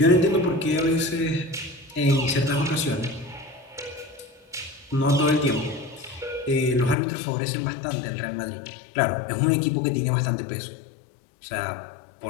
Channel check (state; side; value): drops out; right; at 7.0 s